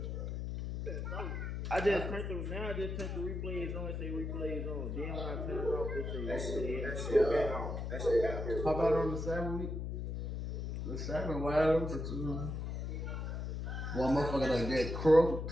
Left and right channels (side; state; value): left; noise; hum, 4 dB below the sound